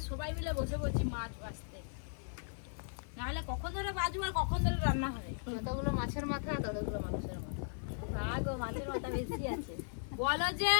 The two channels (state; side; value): silent; right; digital silence